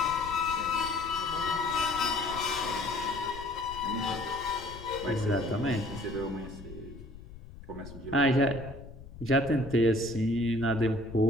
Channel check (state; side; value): noise; left; rumble, 15 dB below the sound